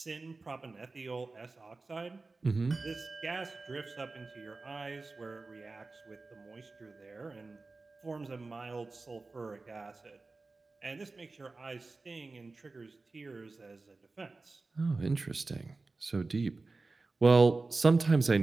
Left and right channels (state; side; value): quieter; left; 3.6 dB